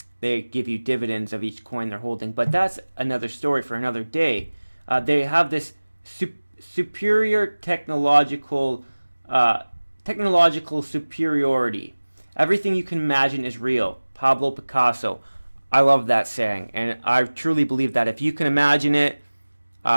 They give you dividends of each coin they're holding, but that's another story for another day. They have this superior technological superiority. Everything you can imagine is real. Pablo Picasso. I love that saying, and I truly believe that if you can imagine it,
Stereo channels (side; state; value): both; inverted; correlation -1.00